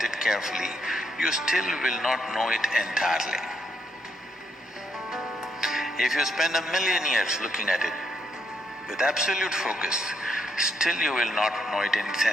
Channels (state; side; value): normal; both; correlation 0.76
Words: it carefully, you still will not know it entirely. If you spend 1,000,000 years looking at it with absolute focus, still you will not know it in its